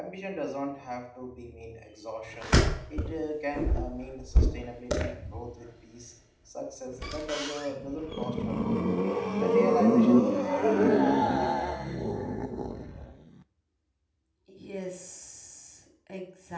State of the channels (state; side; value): identical; both; correlation 1.00